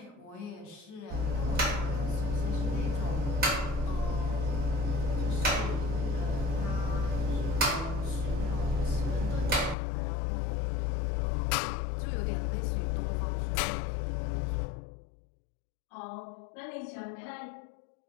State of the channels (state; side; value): drops out; right; at 9.8 s